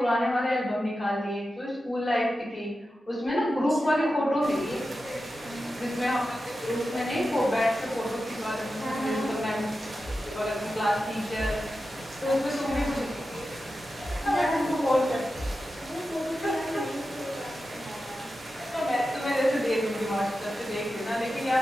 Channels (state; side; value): normal; both; correlation 0.92